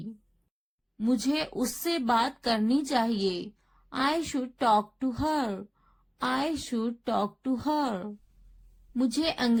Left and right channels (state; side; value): identical; both; correlation 1.00